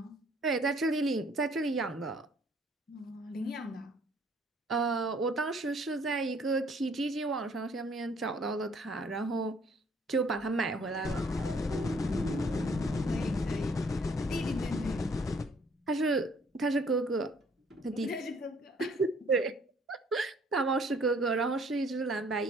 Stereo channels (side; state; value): both; normal; correlation 0.61